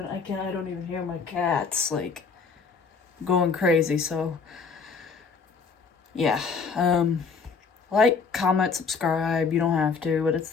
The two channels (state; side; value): quieter; right; 5.2 dB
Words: don't even hear my cats, like, going crazy, so. Yeah. Like, comment, subscribe. You don't have to, but it's